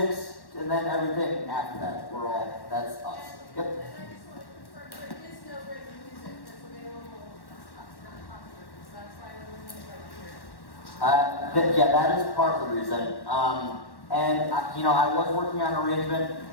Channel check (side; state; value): right; late; 1.1 ms